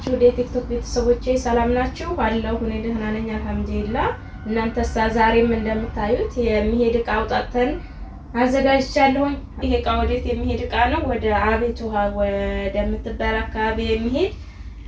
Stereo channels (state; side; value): identical; both; correlation 1.00